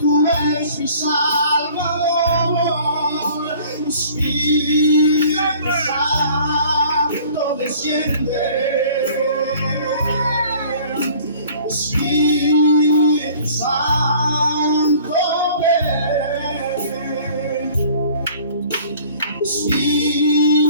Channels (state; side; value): inverted; both; correlation -0.51